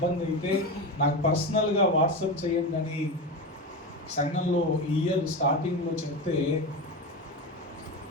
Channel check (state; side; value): normal; both; correlation 0.20